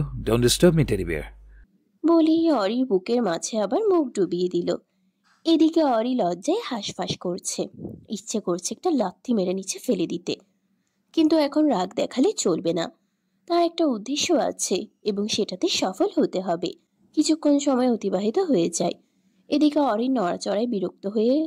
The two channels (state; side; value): identical; both; correlation 1.00